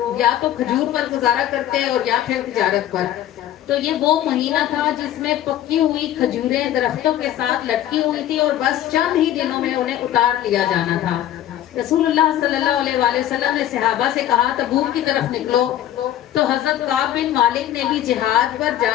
یا تو کھجور پر گزارا کرتے اور یا پھر تجارت پر، تو یہ وہ مہینہ تھا جس میں پکی ہوئی کھجوریں درختوں کے ساتھ لٹکی ہوئی تھی اور بس چند ہی دنوں میں انہیں اتار لیا جانا تھا۔ رسول اللہ صلی اللہ علیہ وآلہ وسلم نے صحابہ سے کہا تبوک کی طرف نکلو، تو حضرت کعب بن مالک نے بھی جہاد پر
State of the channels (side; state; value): right; quieter; 12.1 dB